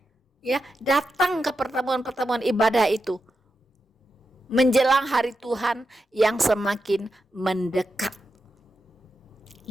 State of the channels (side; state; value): both; normal; correlation 0.88